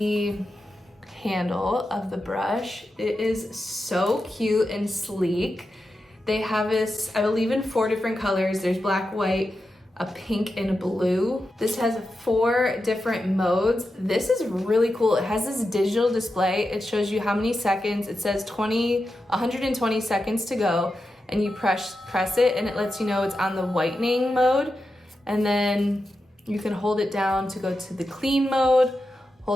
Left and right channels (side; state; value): both; normal; correlation 0.90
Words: handle of the brush. It is so cute and sleek. They have this, I believe, in 4 different colors. There's black, white, a pink, and a blue. This has 4 different modes. This is really cool. It has this digital display. It shows you how many seconds. It says 120 seconds to go, and you press it and it lets you know it's on the whitening mode. And then you can hold it down to go to the clean mode,